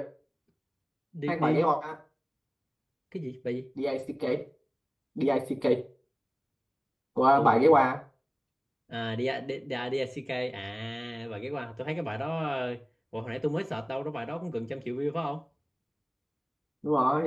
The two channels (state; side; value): identical; both; correlation 1.00